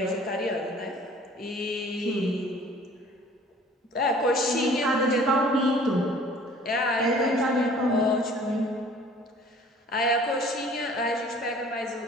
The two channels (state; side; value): normal; both; correlation 0.51